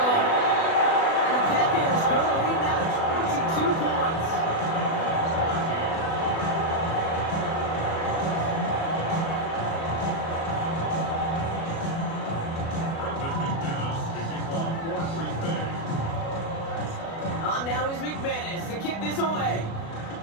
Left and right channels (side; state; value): right; late; 36 ms